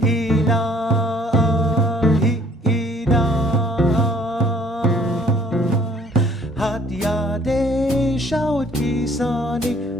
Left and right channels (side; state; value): both; normal; correlation 0.59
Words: Hatyade shawat kisani,